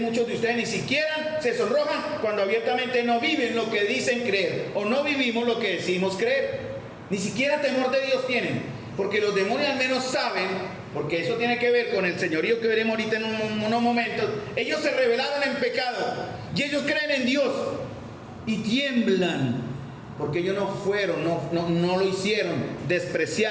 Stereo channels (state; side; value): identical; both; correlation 1.00